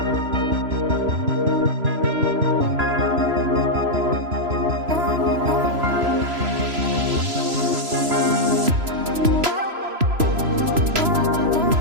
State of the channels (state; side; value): late; left; 3.0 ms